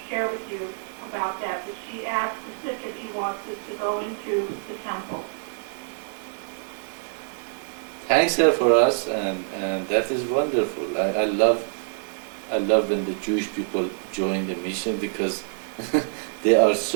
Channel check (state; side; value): silent; left; digital silence